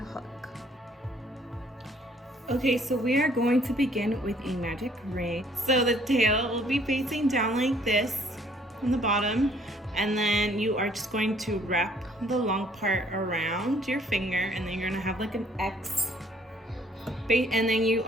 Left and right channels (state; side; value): normal; both; correlation 0.61